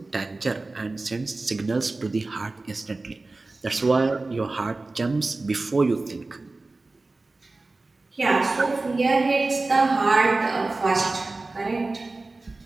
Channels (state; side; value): quieter; left; 3.3 dB